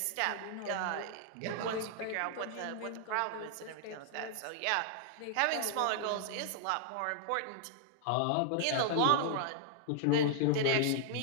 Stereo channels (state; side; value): different; both; correlation -0.01